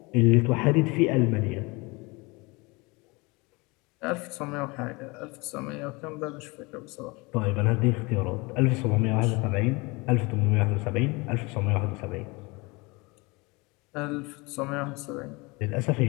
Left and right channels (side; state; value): right; quieter; 26.0 dB